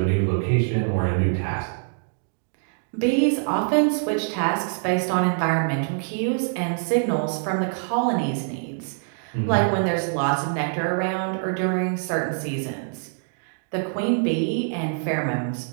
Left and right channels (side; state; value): left; silent; digital silence